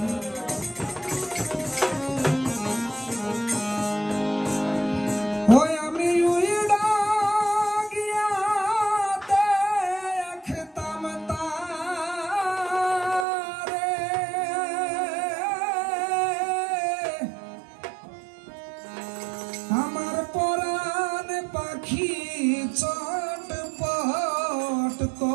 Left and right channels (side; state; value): left; drops out; at 13.2 s